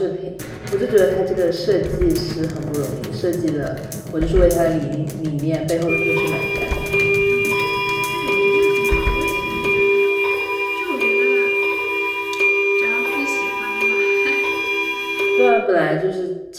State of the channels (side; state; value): both; identical; correlation 1.00